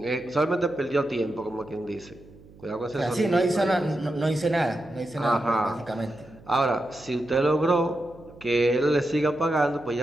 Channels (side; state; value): right; noise; hum, 23 dB below the sound